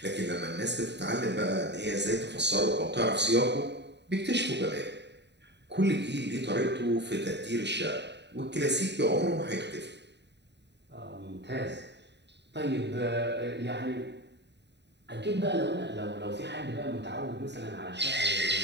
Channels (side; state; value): left; late; 0.50 ms